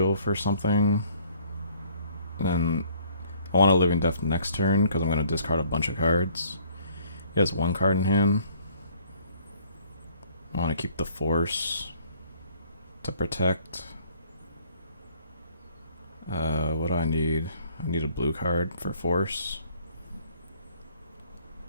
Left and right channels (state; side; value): inverted; both; correlation -0.59